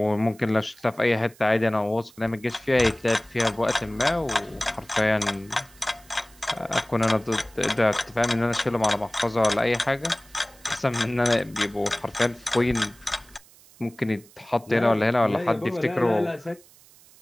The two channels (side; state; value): right; noise; hiss, 26 dB below the sound